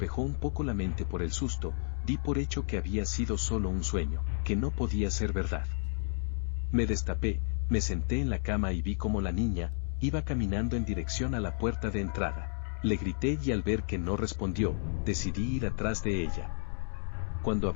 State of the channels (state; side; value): silent; right; digital silence